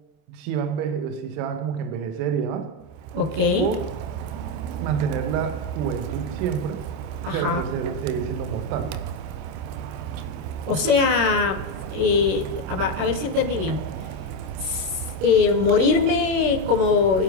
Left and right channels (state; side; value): late; left; 26 ms